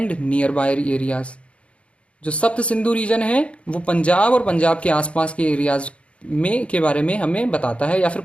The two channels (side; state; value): right; late; 0.061 ms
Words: nearby areas. जो सप्त सिंधु रीजन है वो पंजाब और पंजाब के आसपास के एरियाज में के बारे में हमें बताता है, या फिर